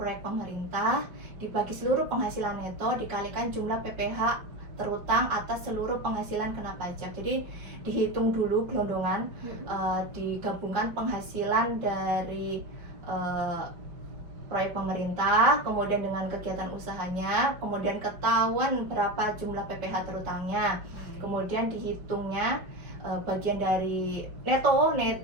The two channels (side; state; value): left; late; 5.2 ms